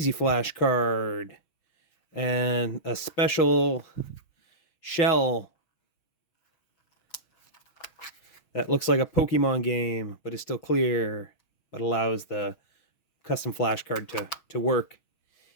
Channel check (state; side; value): late; right; 6.2 ms